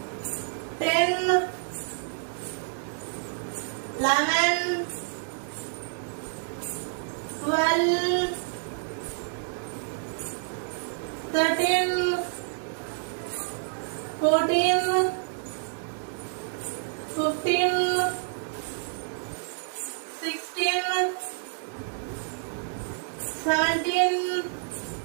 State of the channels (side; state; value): left; silent; 59 dB below the other